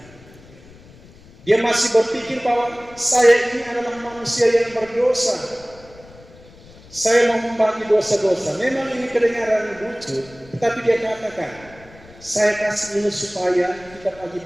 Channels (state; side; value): noise; left; rumble, 23 dB below the sound